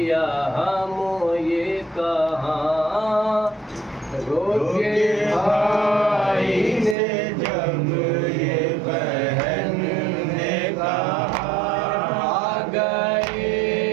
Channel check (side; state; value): left; drops out; at 7.0 s